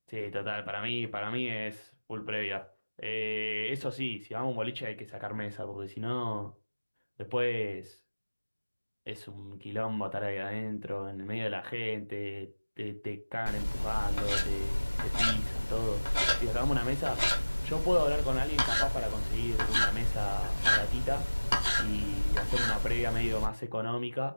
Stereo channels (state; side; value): inverted; both; correlation -1.00